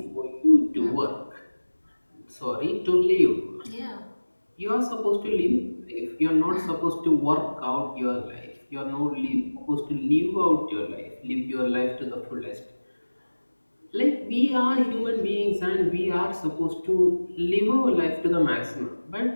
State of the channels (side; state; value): both; inverted; correlation -1.00